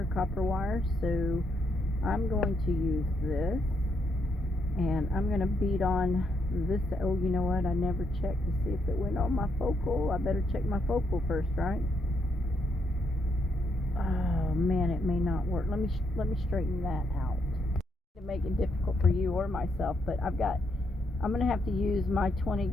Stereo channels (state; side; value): normal; both; correlation 0.76